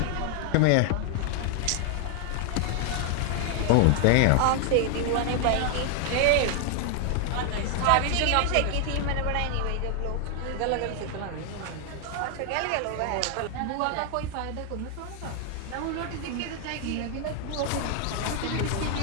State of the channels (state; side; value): different; both; correlation 0.00